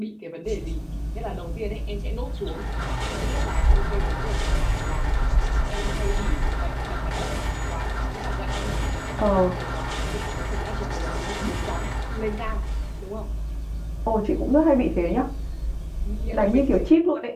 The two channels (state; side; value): identical; both; correlation 1.00